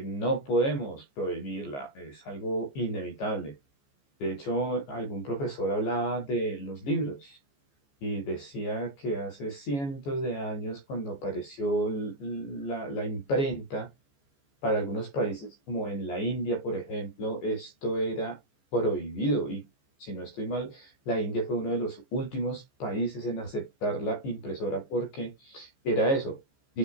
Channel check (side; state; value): right; late; 14 ms